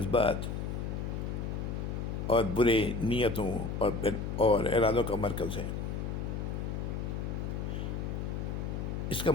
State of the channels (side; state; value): left; noise; hum, 3 dB below the sound